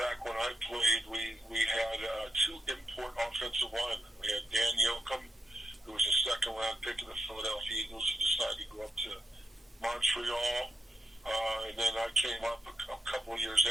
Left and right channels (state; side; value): normal; both; correlation 0.84